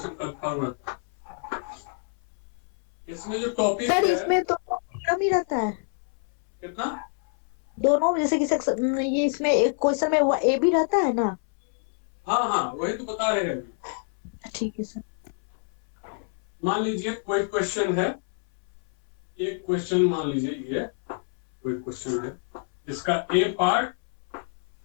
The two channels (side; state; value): right; silent; 60 dB below the other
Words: का फॉर्मेट। इसमें जो टॉपिक सर है, इसमें तो कम ही रहता है कितना दोनों, जैसे कि सेक्शन ये इसमें एक क्वेश्चन में ए भी रहता है ना। हाँ हाँ वही तो बता रहे हैं अभी। ठीक है सर। मान लीजिए कोई क्वेश्चन है, एक क्वेश्चन मान लीजिए ये कोई क्वेश्चन है, इसका ए पार्ट